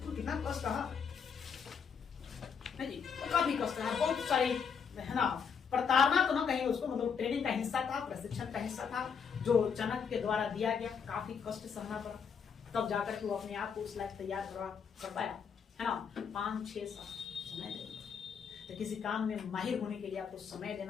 कितना कष्ट रहा जी, काफी कष्ट रहा, बहुत सारी है ना, प्रताड़ना तो ना कहीं उसको, मतलब ट्रेनिंग का हिस्सा था, प्रशिक्षण का हिस्सा था जो चाणक्य के द्वारा दिया गया, काफी कष्ट सहना पड़ा, तब जाकर के वो अपने आप को उस लायक तैयार कर पाया, है ना। 5-6 साल समय देना, तो किसी काम में माहिर होने के लिए आपको समय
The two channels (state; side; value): quieter; right; 6.6 dB